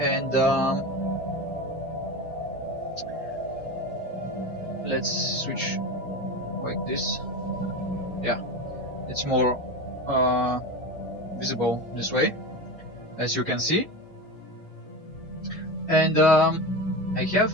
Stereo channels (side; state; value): both; normal; correlation 0.25